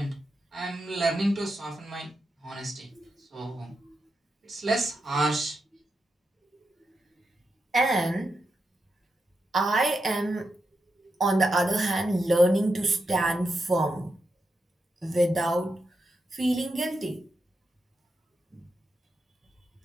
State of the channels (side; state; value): both; normal; correlation 0.86